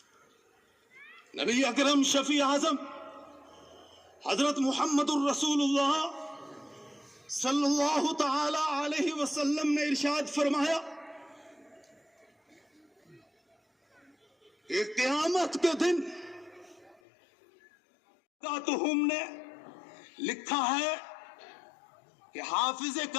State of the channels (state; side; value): drops out; right; at 17.0 s